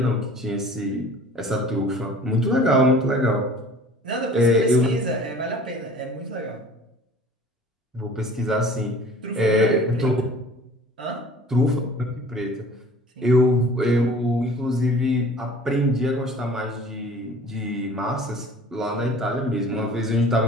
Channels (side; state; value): both; normal; correlation 0.46